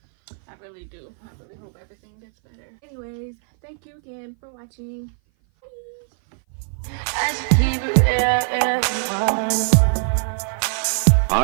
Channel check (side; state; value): left; silent; 58 dB below the other